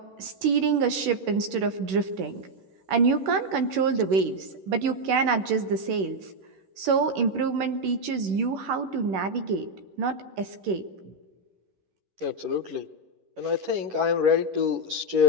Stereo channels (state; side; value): late; left; 11 ms